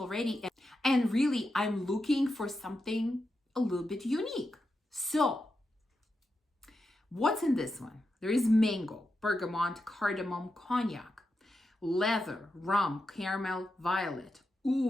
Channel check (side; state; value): both; normal; correlation 0.87